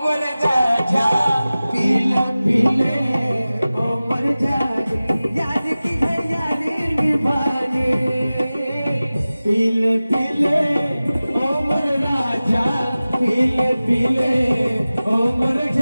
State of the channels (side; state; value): both; inverted; correlation -0.97